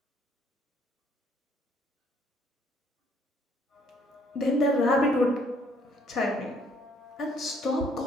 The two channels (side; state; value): both; normal; correlation 0.64